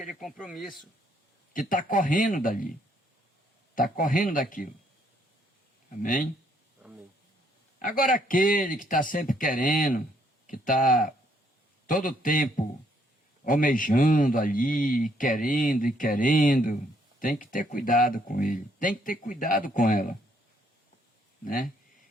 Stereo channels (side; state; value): both; normal; correlation 0.69